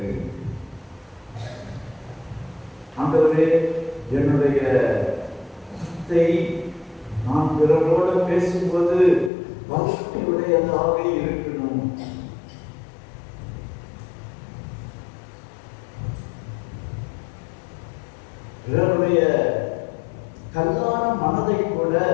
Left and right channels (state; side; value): drops out; right; at 9.3 s